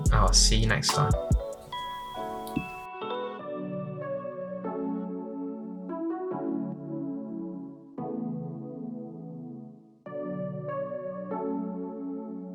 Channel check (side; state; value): both; identical; correlation 1.00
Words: I'll see you next time.